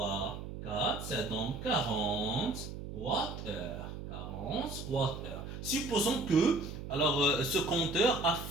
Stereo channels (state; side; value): noise; right; hum, 9 dB below the sound